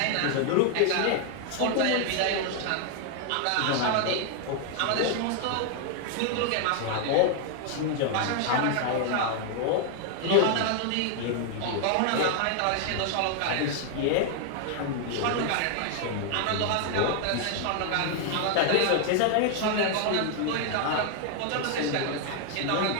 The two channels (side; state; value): both; different; correlation 0.00